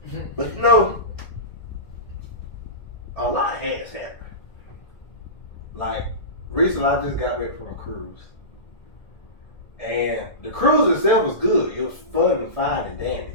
But, you know, a lot has happened. Like, recently I just got back from a cruise. And the cruise itself was good. It was fun and fine and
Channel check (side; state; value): right; late; 1.9 ms